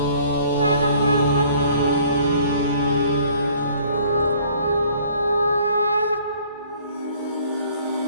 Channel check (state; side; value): inverted; both; correlation -0.56